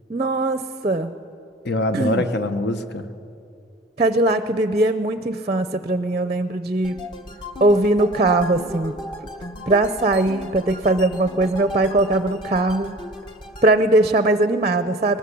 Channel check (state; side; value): normal; both; correlation 0.43